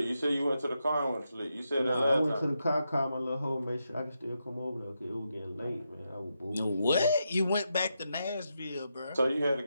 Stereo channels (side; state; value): both; inverted; correlation -0.85